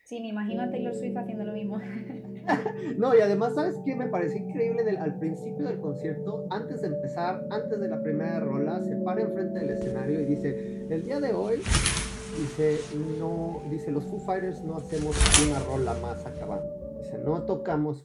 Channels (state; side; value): identical; both; correlation 1.00